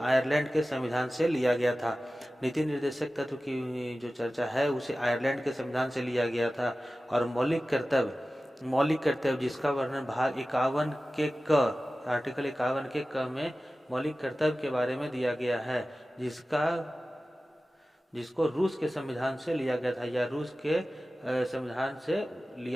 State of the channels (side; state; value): both; normal; correlation 0.96